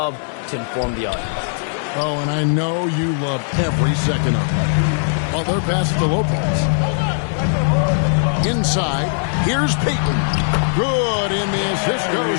to inform the audience. Oh, and I know you love every second of it. Well, their pass to Lopez. Inside, here's Payton. Good, and the assist goes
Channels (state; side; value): silent; right; digital silence